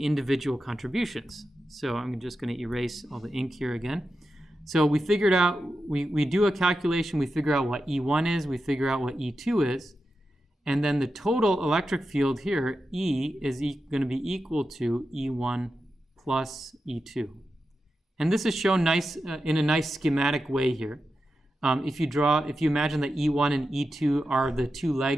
individual contributions. So I'm just going to erase all the ink here again. So we figured out, we do a calculation, we figure out what E1 is, we figure out what E2 is, and then the total electric field here, E, is going to be equal to E1 plus E2. And this is shown nice in a nice schematic way here. If you imagine that E1 and E2 are the two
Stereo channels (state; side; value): normal; both; correlation 0.90